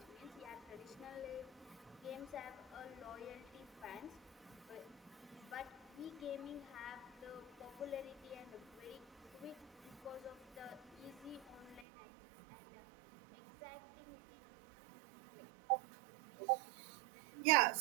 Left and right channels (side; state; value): left; drops out; at 11.9 s